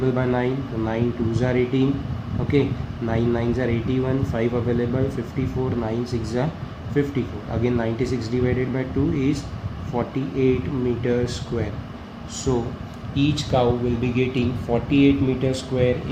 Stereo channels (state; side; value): identical; both; correlation 1.00